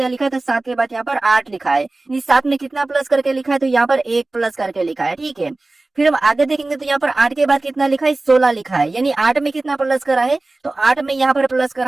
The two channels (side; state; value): left; quieter; 3.1 dB